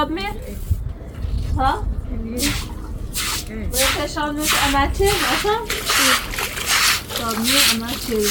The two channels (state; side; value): identical; both; correlation 1.00